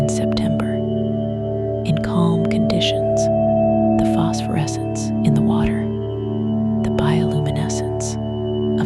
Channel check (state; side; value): identical; both; correlation 1.00